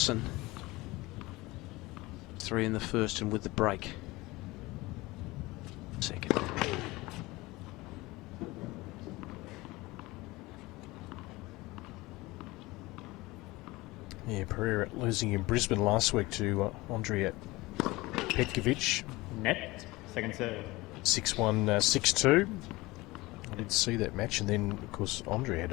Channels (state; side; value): quieter; right; 21.0 dB